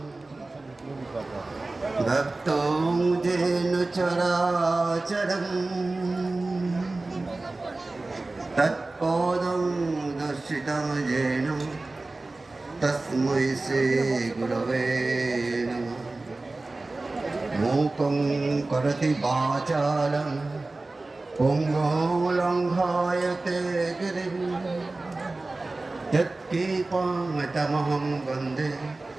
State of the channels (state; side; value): quieter; left; 3.2 dB